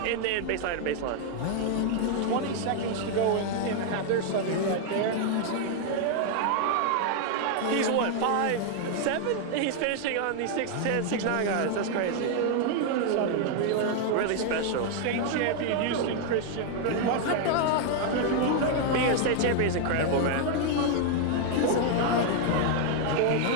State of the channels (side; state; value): both; different; correlation 0.00